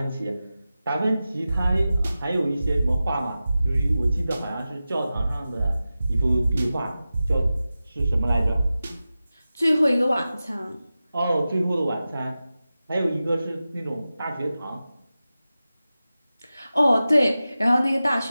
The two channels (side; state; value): both; inverted; correlation -0.94